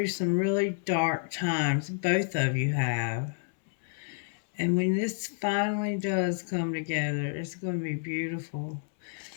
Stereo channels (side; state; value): right; silent; 58 dB below the other